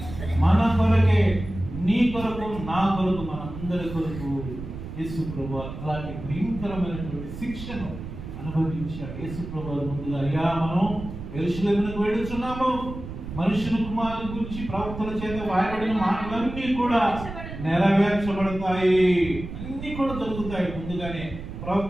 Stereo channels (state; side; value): noise; right; rumble, 10 dB below the sound